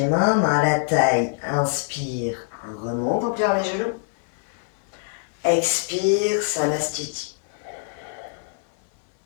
mains, main à la taille. Inspire, remonte en pliant les genoux. Expire, Samastiti.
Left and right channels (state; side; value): silent; right; 61 dB below the other